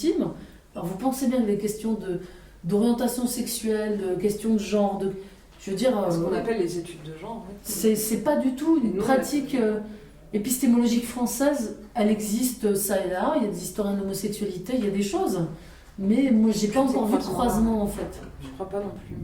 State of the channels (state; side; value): identical; both; correlation 1.00